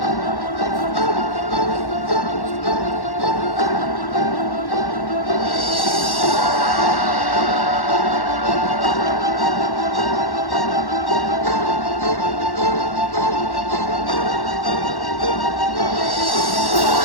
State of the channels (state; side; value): late; right; 1.1 ms